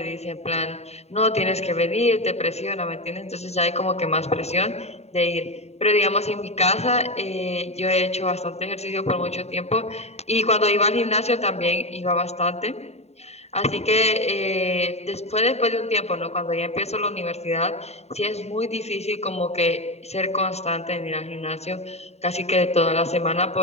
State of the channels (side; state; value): right; late; 0.31 ms